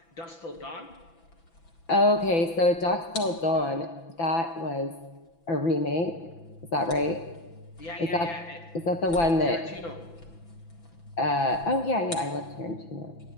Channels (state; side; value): late; right; 6.0 ms